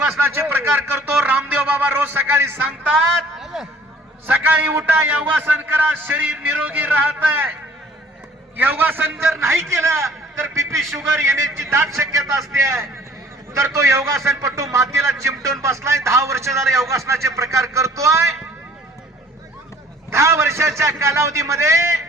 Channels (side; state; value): both; normal; correlation 0.54